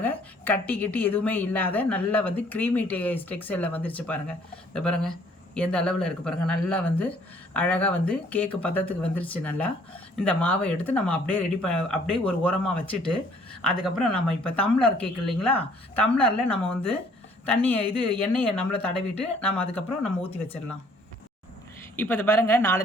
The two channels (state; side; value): normal; both; correlation 0.60